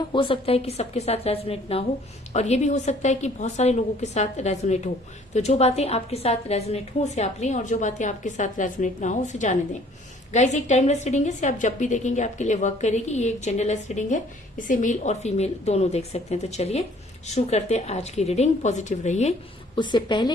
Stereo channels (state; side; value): normal; both; correlation 0.57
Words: हो सकता है कि सबके साथ रेजोनेट ना हो और ये भी हो सकता है कि बहुत सारे लोगों के साथ रेजोनेट हो। तो जो बातें आपके साथ रेजोनेट हो उसे आप लें और जो बातें आपके साथ रेजोनेट ना हो उसे जाने दें। गाइस, एक टाइमलेस रीडिंग है, इसे आप जब भी देखेंगे आपके लिए वर्क करेगी। ये एक जेंडरलेस रीडिंग है, इसे मेल और फीमेल दोनों देख सकते हैं। तो चलिए शुरू करते हैं आज की रीडिंग। पॉजिटिव रहिए। उससे